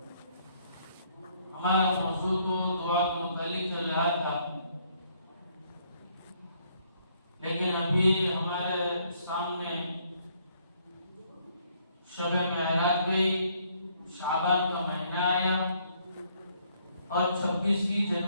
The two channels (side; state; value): both; inverted; correlation -0.68